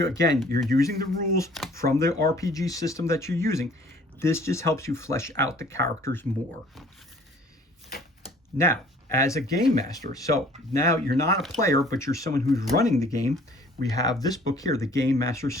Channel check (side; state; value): both; normal; correlation 0.54